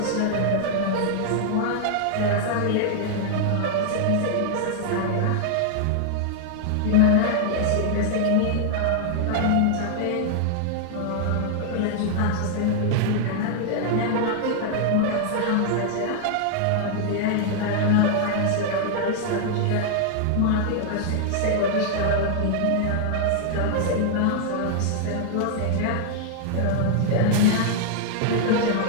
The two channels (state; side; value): different; both; correlation 0.00